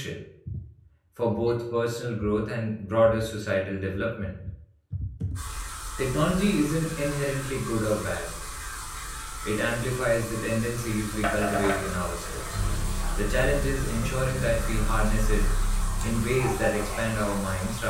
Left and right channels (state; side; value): identical; both; correlation 1.00